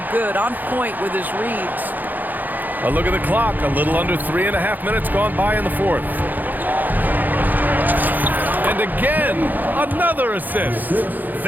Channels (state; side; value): late; left; 0.085 ms